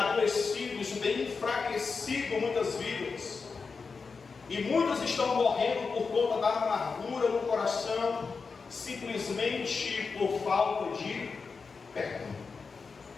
isso tem enfraquecido muitas vidas. E muitas estão morrendo por conta da amargura no coração, simplesmente por falta de perdão.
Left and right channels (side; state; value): right; quieter; 4.9 dB